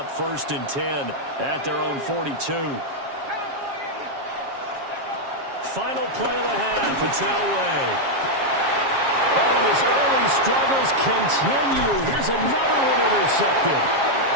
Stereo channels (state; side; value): late; left; 7.4 ms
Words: 1st and 10 at their own 42. Final play of the half. It's Elway. Oh, and his early struggles continue. Here's another one intercepted.